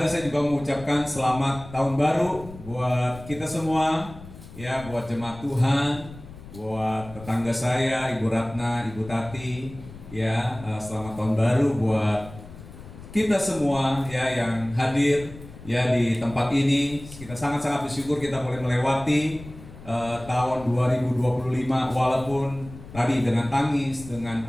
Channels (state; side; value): noise; left; rumble, 16 dB below the sound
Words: saya juga mengucapkan selamat tahun baru buat kita semua, ya, buat jemaat Tuhan, buat tetangga saya, Ibu Ratna, Ibu Tati, ya, selamat tahun baru buat kita semua, ya, yang hadir, ya, di tempat ini. Kita sangat-sangat bersyukur kita boleh melewati tahun 2025 walaupun tadi dengan tangis, dengan